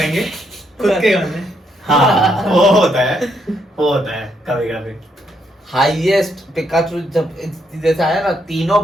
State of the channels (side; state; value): both; normal; correlation 0.76